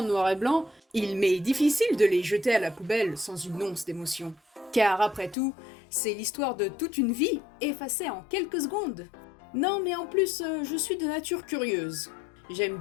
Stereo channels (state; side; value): drops out; right; at 5.4 s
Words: noir et blanc, il m'est difficile de les jeter à la poubelle sans une once d'émotion. Car après tout, c'est l'histoire de toute une vie effacée en quelques secondes. Non mais en plus, je suis de nature curieuse. J'aime